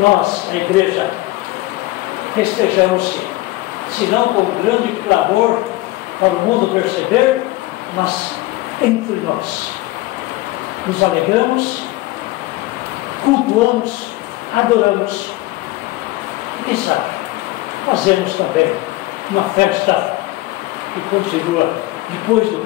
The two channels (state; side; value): quieter; right; 18.7 dB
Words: a igreja, festejamos, se não com grande clamor para o mundo perceber, mas entre nós. Nos alegramos, cultuamos, adoramos. E quem sabe, fazemos também uma festa que continua depois do